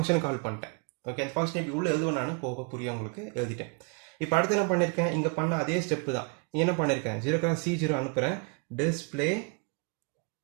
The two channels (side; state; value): left; quieter; 35.2 dB